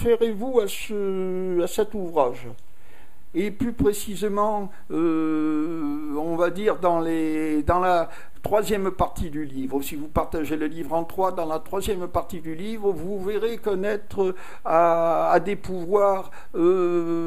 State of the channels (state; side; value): identical; both; correlation 1.00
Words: à cet ouvrage. Et plus précisément, on va dire dans la troisième partie du livre. Si vous partagez le livre en trois, dans la troisième partie du livre, vous verrez connaître à des pouvoirs